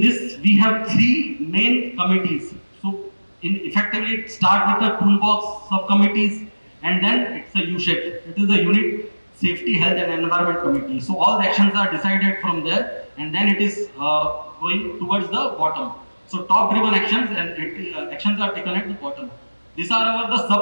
this we have three main committees. So, effectively start with the toolbox subcommittees, and then it's a U-shape. It is a unit safety, health and environment committee. So all the actions are decided from there, and then it is going towards the bottom. So top driven actions and actions are taken at the bottom. These are the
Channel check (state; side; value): inverted; both; correlation -1.00